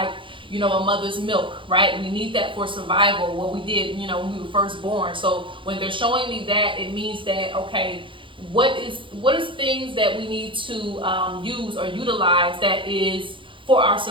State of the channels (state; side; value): late; left; 0.25 ms